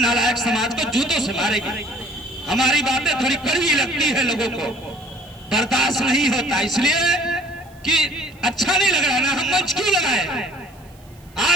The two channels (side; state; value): right; noise; hiss, 29 dB below the sound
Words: समाज को जूतों से मारेगी। हमारी बातें थोड़ी कड़वी लगती है, लोगों को बर्दाश्त नहीं होता, इसलिए कि अच्छा नहीं लग रहा ना, हम मंच क्यों लगाए।